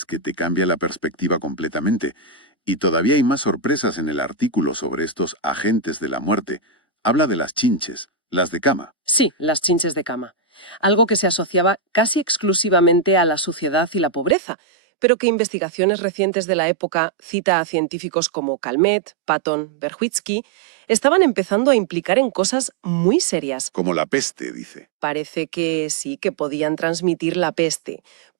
que te cambia la perspectiva completamente. Y todavía hay más sorpresas en el artículo sobre estos agentes de la muerte. Habla de las chinches, las de cama. Sí, las chinches de cama. Algo que se asociaba casi exclusivamente a la suciedad y la pobreza, pero que investigaciones recientes de la época, cita a científicos como Calmet, Patton, Berwitsky, estaban empezando a implicar en cosas muy serias. Como la peste, dice. Parece que sí que podían transmitir la peste,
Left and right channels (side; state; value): left; drops out; at 14.4 s